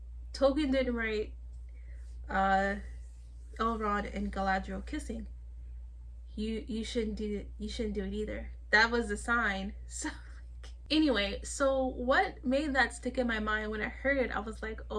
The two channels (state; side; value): identical; both; correlation 1.00